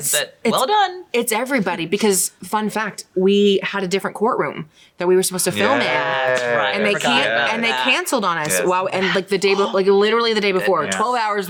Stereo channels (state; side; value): identical; both; correlation 1.00